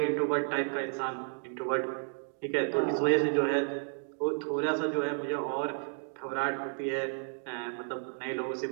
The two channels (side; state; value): left; silent; 56 dB below the other